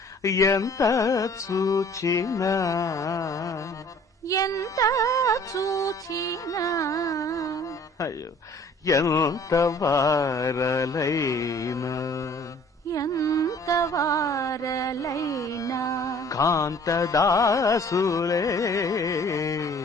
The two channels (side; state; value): both; normal; correlation 0.52